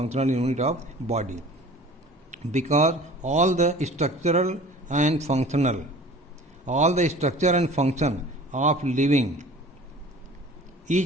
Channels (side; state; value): both; normal; correlation 0.44